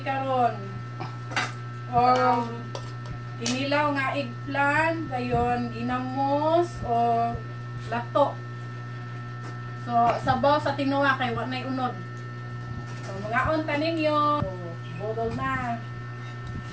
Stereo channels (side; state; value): both; identical; correlation 1.00